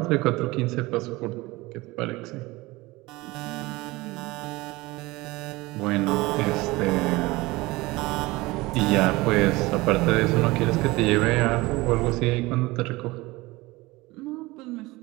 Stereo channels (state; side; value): quieter; left; 21.3 dB